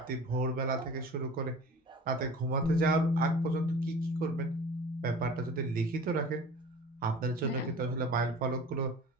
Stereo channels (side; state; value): both; normal; correlation 0.41